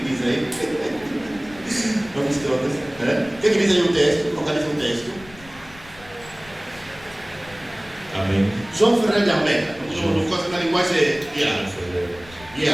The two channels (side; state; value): left; noise; rumble, 22 dB below the sound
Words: aí? Vamos todos. O que diz aí o texto? Localiza o texto. Amém. João Ferreira de Almeida. No caso da linguagem